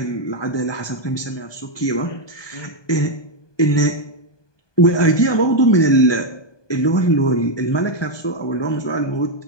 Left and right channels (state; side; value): late; right; 1.2 ms